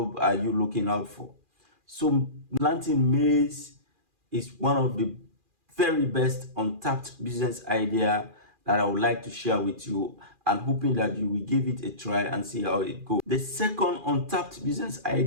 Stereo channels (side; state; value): left; late; 2.4 ms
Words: are you looking out for? So planting maize is one of the very best untapped business idea that I would like to share with you, and hoping that you will give it a try and see how it goes. The second untapped business